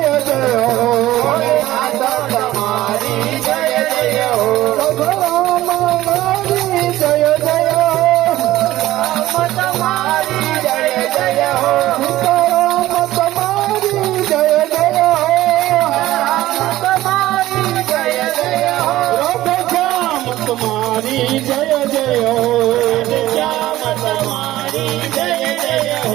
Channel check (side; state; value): left; quieter; 15.6 dB